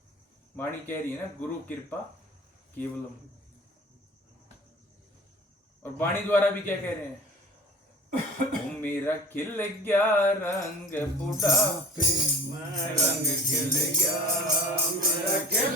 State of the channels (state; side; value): normal; both; correlation 0.40